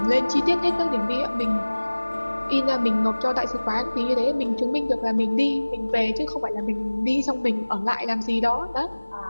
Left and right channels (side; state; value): both; inverted; correlation -1.00